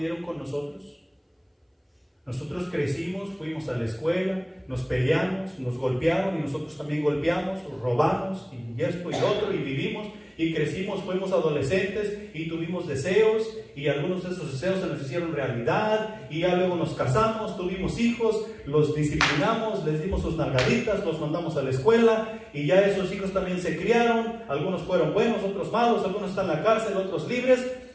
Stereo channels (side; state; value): both; identical; correlation 1.00